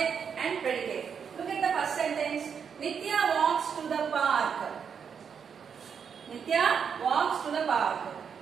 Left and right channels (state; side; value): quieter; left; 6.9 dB